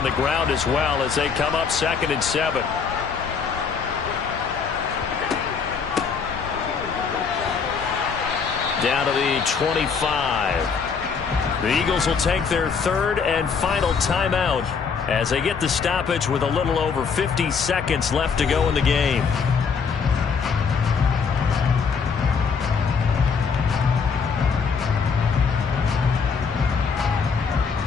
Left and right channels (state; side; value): quieter; right; 5.8 dB